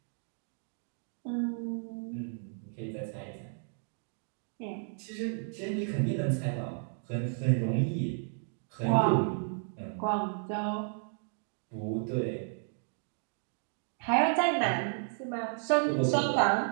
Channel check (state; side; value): silent; left; 56 dB below the other